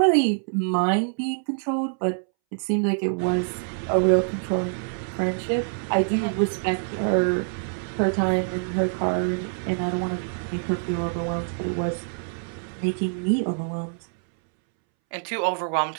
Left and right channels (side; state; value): left; silent; 62 dB below the other